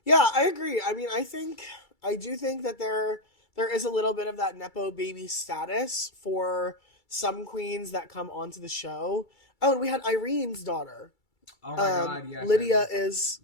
yeah, I agree. I mean, I do think that there is a little bit of that nepo baby status for some queens that come onto the show. Oh, and we had Irene's daughter. Oh my God, yes. Lydia is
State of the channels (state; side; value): late; right; 2.3 ms